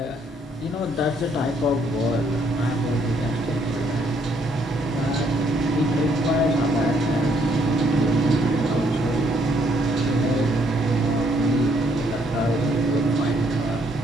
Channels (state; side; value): normal; both; correlation 0.69